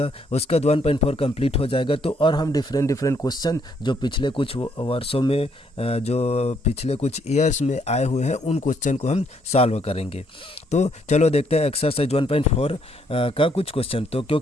उसके बाद 1.4 कंप्लीट हो जाएगा तो और हम डिफरेंट क्वेश्चन जो पिछले कुछ वर्षों में जो पिछले कुछ ईयर्स में आए हुए हैं उन क्वेश्चन को हम सॉल्व करेंगे। तो चलो देखते हैं एक्सरसाइज 1.4 का कुछ क्वेश्चन। तो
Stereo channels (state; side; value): normal; both; correlation 0.70